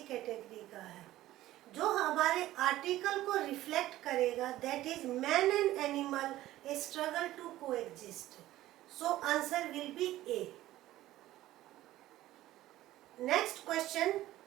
कैटेगरी का है. जो हमारे आर्टिकल को रिफ्लेक्ट करेगा that is man and animal, a struggle to coexist. So answer will be A. Next question,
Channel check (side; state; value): left; quieter; 15.2 dB